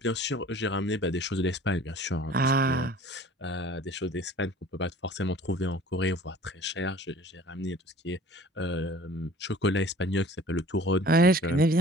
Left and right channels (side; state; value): both; normal; correlation 0.47